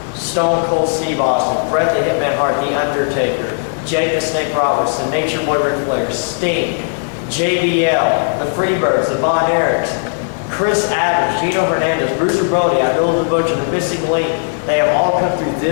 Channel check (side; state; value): right; silent; digital silence